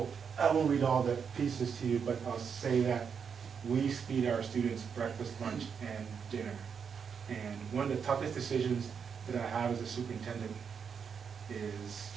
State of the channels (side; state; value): left; quieter; 6.6 dB